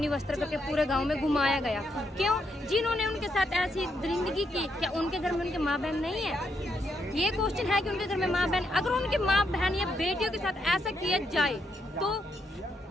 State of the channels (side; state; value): both; normal; correlation 0.78